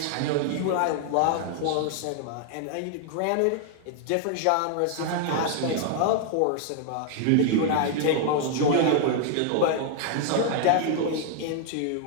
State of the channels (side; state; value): both; different; correlation -0.01